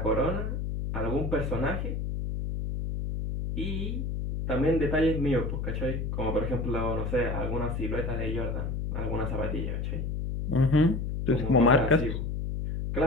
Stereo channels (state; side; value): noise; left; hum, 2 dB below the sound